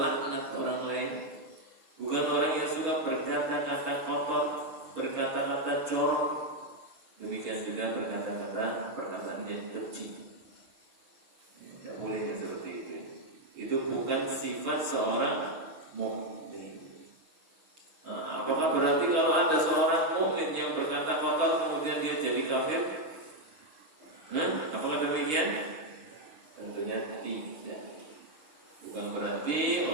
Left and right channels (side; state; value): left; late; 6.5 ms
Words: orang lain. Bukan orang yang suka berkata-kata kotor, berkata-kata corok. Demikian juga berkata-kata perkataan yang keji. Tidak boleh seperti itu. Itu bukan sifat seorang mukmin. Apakah berarti kalau ada seorang mukmin yang berkata kotor kemudian dia jadi kafir? Apakah demikian? Tentunya tidak. Bukan berarti